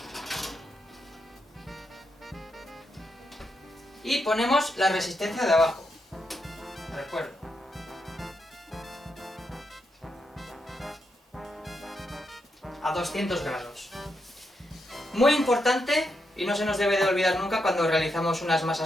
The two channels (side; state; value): both; normal; correlation 0.83